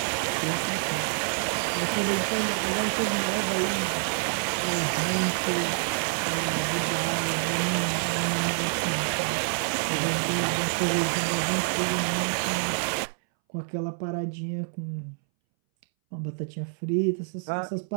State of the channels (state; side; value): silent; left; 60 dB below the other